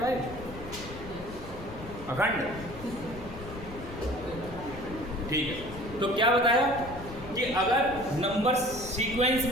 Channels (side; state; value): left; noise; rumble, 13 dB below the sound